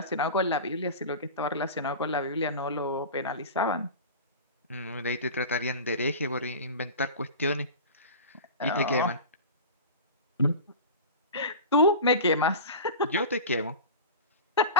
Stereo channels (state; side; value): inverted; both; correlation -0.31